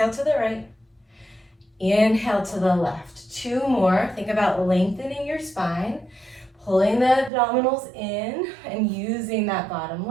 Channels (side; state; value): left; drops out; at 7.3 s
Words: to the right. Inhale to the left. 2 more. Think about lengthening your spine, pulling the abdominals in, and using that bottom